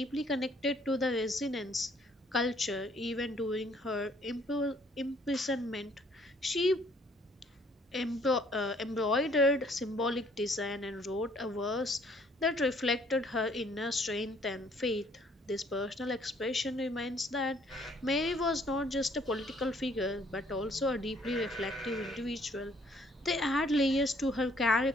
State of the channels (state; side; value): normal; both; correlation 0.62